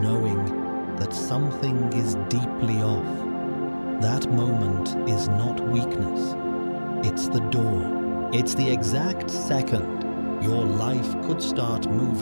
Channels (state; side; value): inverted; both; correlation -1.00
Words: that something is deeply off. That moment is not weakness. It's the door. It's the exact second your life could start